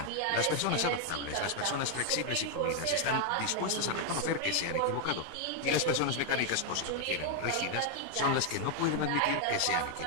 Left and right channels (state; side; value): different; both; correlation 0.00